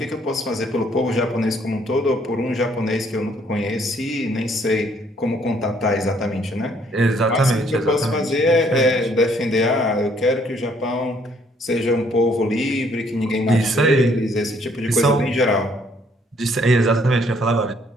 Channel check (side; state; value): both; normal; correlation 0.65